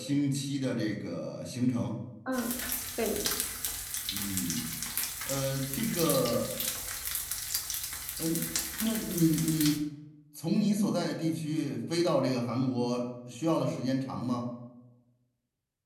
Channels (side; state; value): both; identical; correlation 1.00